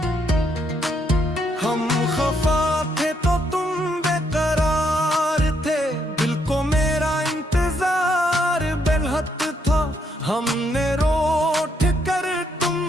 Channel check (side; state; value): both; normal; correlation 0.74